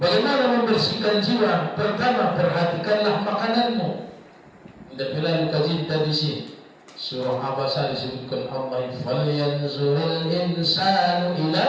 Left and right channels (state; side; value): identical; both; correlation 1.00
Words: membersihkan jiwa? Pertama, perhatikanlah makananmu. Tidak pernah kaji tadi sih. Surah Abasa disebutkan Allah, falyanzurul insanu